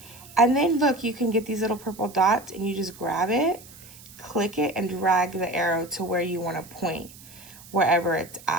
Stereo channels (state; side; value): noise; right; hiss, 20 dB below the sound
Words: And then look, you can get these little purple dots, and you just grab it, click it, and drag the arrow to where you want to point, wherever it's